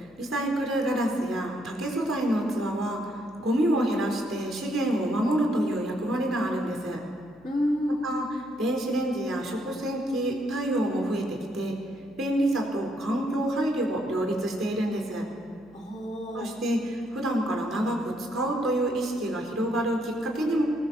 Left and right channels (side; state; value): left; noise; hum, 27 dB below the sound